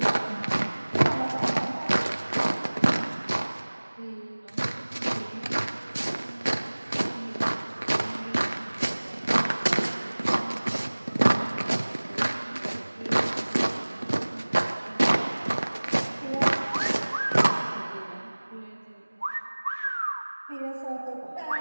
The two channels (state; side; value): inverted; both; correlation -1.00